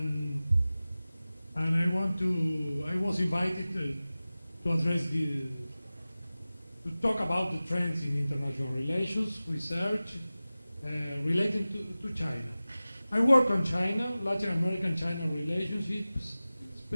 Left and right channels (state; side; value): inverted; both; correlation -0.97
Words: I was invited to address to talk about the trends in international relations, research related to China. I work on China, Latin American-China relationships,